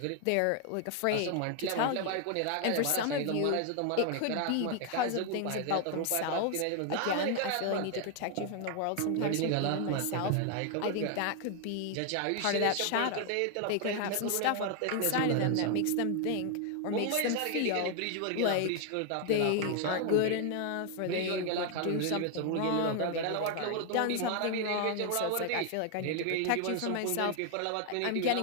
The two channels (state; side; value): different; both; correlation 0.00